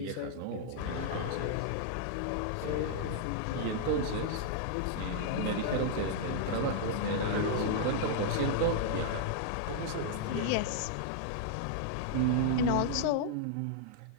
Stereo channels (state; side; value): different; both; correlation -0.01